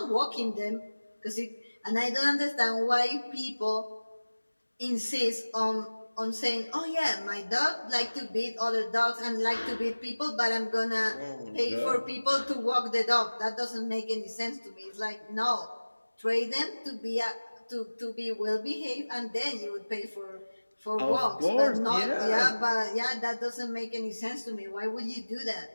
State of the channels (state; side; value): inverted; both; correlation -1.00